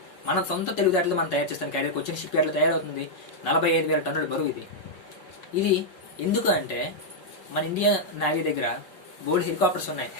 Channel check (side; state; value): right; late; 5.3 ms